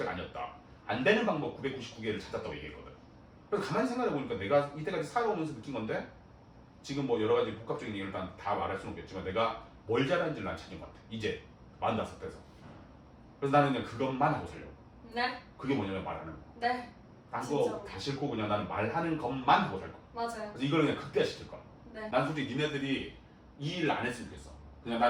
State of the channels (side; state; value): both; identical; correlation 1.00